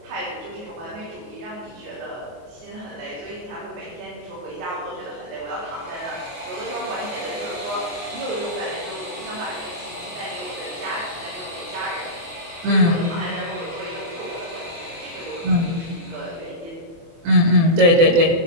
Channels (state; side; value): late; left; 24 ms